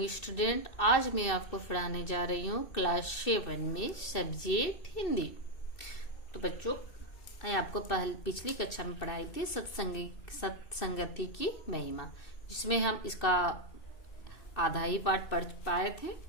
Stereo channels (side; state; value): right; late; 2.6 ms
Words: student. आज मैं आपको पढ़ाने जा रही हूँ क्लास 7 में सब्जेक्ट हिंदी। तो बच्चों, मैं आपको पिछली कक्षा में पढ़ाई थी सत्संगति की महिमा, जिसमें हम इसका आधा ही पाठ पढ़ पाए थे।